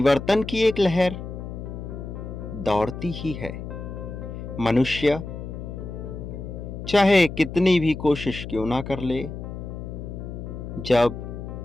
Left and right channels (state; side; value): noise; left; hum, 8 dB below the sound